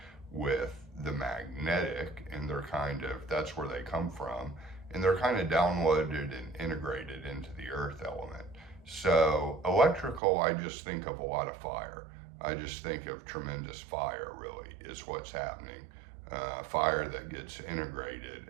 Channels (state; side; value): drops out; left; at 10.2 s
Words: with the magnetic, and that's where they come from. And they're kind of downloaded and integrated into the earth element. So electrical, I just think of a lot of fire. I just think of tremendous fire, really, is what's happening. Fire that gets integrated